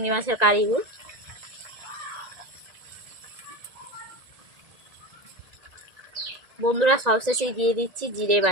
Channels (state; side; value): late; left; 1.9 ms